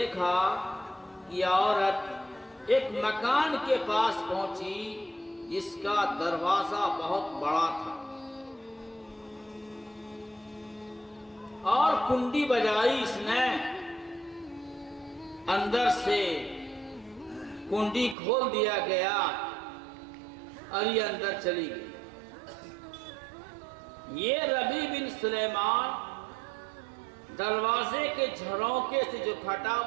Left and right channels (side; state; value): left; drops out; at 18.2 s